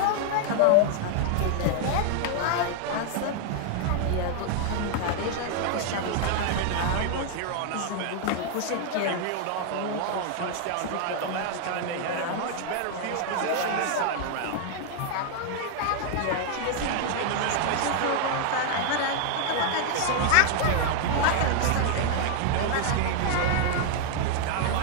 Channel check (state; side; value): different; both; correlation 0.00